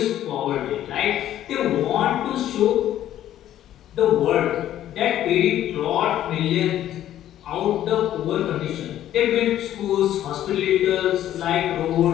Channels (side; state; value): right; quieter; 12.1 dB